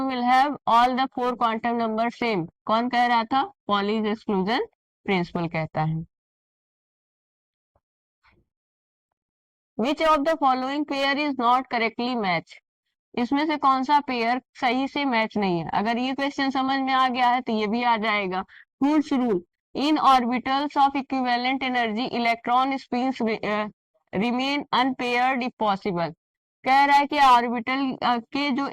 will have all the 4 quantum number same, कौन कह रहा था, पॉलीज एक्सक्लूजन प्रिंसिपल कहता है। Which of the following pair is not correctly match, इसमें से कौन सा पेयर सही से मैच नहीं है। अगर ये क्वेश्चन समझ में आ गया है तो ये भी आ जाएगा। Hund's rule, in orbitals of equivalent energy electron spins remain unpaired if possible, कह रहा है कि ऑर्बिटल के जो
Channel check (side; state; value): both; identical; correlation 1.00